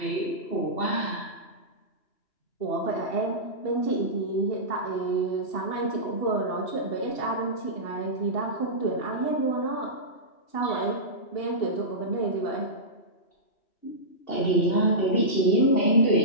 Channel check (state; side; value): late; right; 2.8 ms